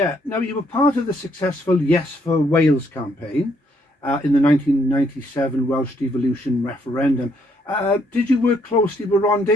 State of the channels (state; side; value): normal; both; correlation 0.71